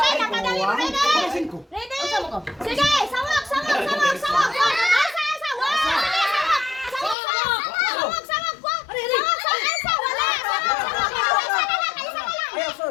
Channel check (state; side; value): drops out; right; at 7.2 s